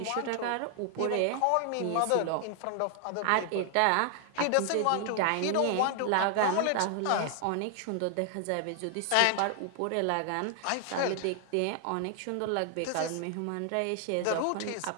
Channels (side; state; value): both; different; correlation 0.00